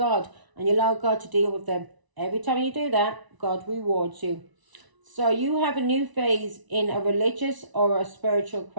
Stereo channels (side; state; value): left; late; 1.0 ms